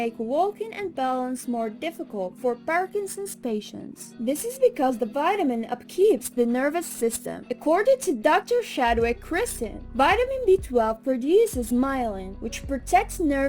walking and balance more difficult for Parkinson's patients. This is because the vitamin upkeeps the nervous system. According to Dr. Shadwick Kristen, vitamin B12 produces myelin, which protects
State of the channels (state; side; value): identical; both; correlation 1.00